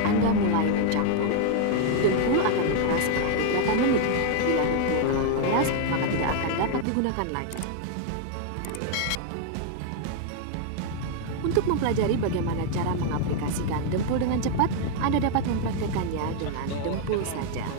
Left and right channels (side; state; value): both; different; correlation 0.00